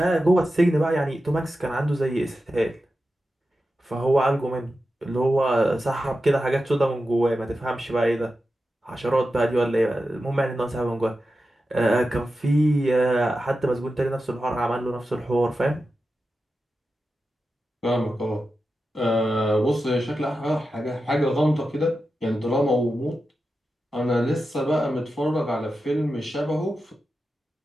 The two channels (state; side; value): normal; both; correlation 0.91